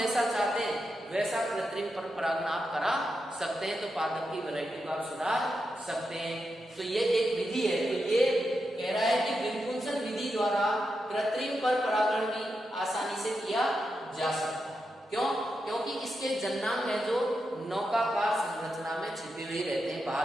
चाहते हैं वैसा कृत्रिम परपरागण आप करा सकते हैं। तो पादप की वैरायटी को आप सुधार सकते हैं। तो ये एक विधि है। तो ये कह रहा है कि विपुंसन विधि द्वारा कृत्रिम परपरागण भी आसानी से किया जा सकता है। क्यों? क्योंकि इसके जन्नांग है जो नौकाकार संरचना में छिपे हुए रहते हैं,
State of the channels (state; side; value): normal; both; correlation 0.87